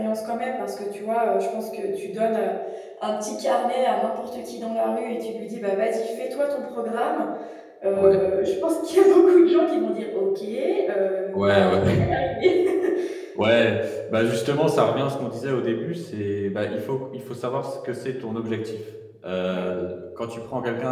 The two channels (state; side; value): identical; both; correlation 1.00